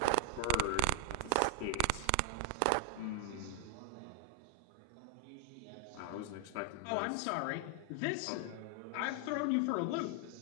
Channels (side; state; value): both; different; correlation 0.01